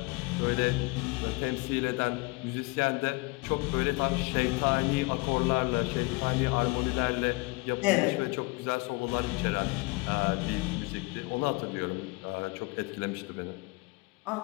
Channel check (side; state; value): right; quieter; 25.7 dB